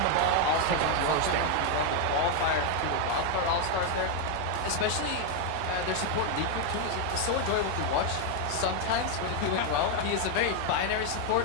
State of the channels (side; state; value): both; different; correlation 0.01